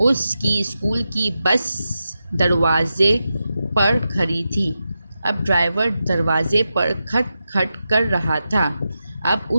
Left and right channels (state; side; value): inverted; both; correlation -0.90